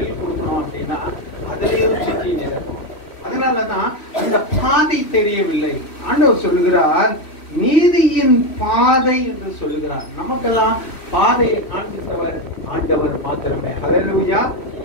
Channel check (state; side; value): late; right; 3.1 ms